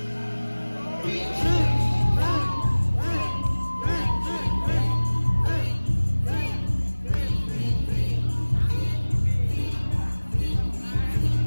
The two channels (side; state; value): both; inverted; correlation -1.00